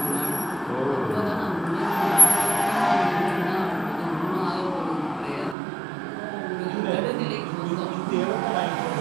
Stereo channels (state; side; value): drops out; left; at 5.6 s